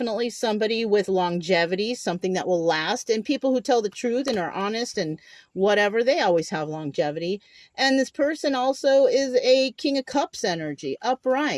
somebody with longevity, something that will last. And people who tell the truth and are honest and whatever, they always have longevity. And this person also is a King of Cups energy,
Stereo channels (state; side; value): identical; both; correlation 1.00